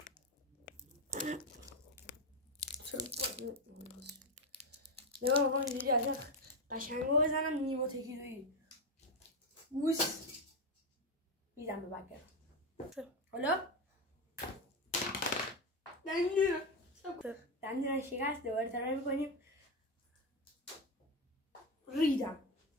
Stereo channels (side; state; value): both; normal; correlation 0.11